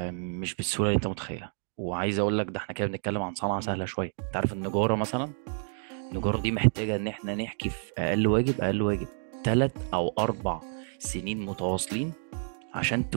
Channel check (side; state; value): left; silent; 58 dB below the other